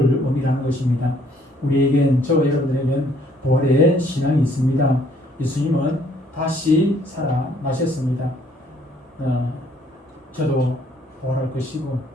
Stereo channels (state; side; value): normal; both; correlation 0.63